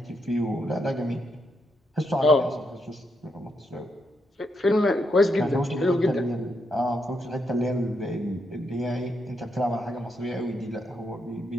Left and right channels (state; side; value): normal; both; correlation 0.80